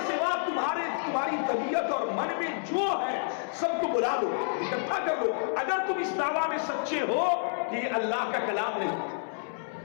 سوا تمہاری طبیعت اور من میں جو ہے سب کو بلا لو، اکٹھا کر لو. اگر تم اس دعویٰ میں سچے ہو کہ یہ اللہ کا کلام نہیں،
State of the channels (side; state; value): right; silent; 58 dB below the other